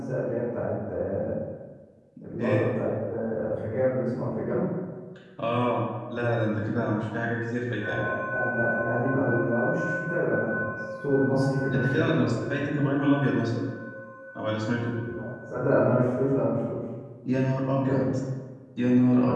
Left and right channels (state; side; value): identical; both; correlation 1.00